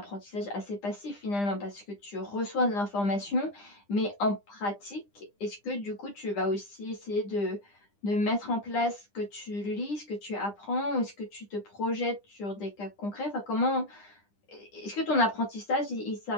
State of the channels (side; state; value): right; late; 9.9 ms